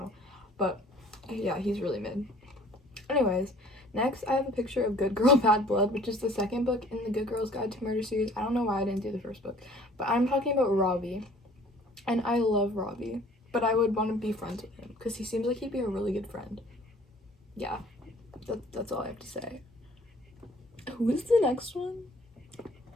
But yeah, he's really mid. Anyways, next I have a picture of Good Girl Bad Blood, which is the 2nd book in the Good Girl's Guide to Murder series. I don't know why I didn't do the 1st book, but I'm talking about Robbie. And I love Robbie, but I would want to be friends with him because he seems like he'd be a really good friend. Yeah, that's all I have to say. Who is the next one?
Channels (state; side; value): normal; both; correlation 0.53